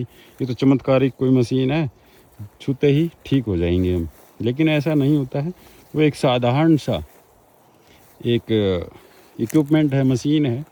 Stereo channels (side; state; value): both; identical; correlation 1.00